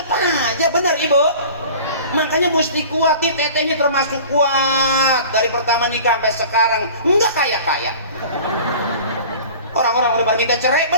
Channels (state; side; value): inverted; both; correlation -0.42